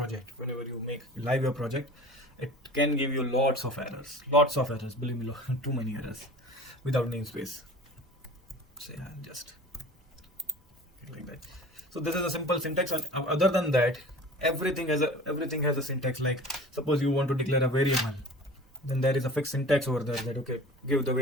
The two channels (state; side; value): normal; both; correlation 0.41